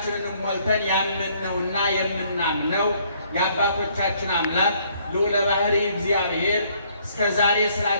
ሞልተን ያመንነውና የምናምነው የአባቶቻችን አምላክ ልዑለ ባሕርይ እግዚአብሔር እስከ ዛሬ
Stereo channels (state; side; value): inverted; both; correlation -0.65